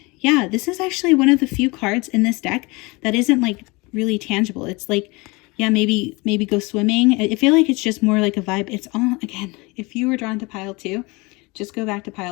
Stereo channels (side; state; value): right; quieter; 25.5 dB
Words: yeah, this is actually one of the few cards in this deck that isn't like really tangible. It's like, yeah, maybe go swimming. I feel like it's just more like a vibe. It's all, again, if you were drawn to pile 2, just go back to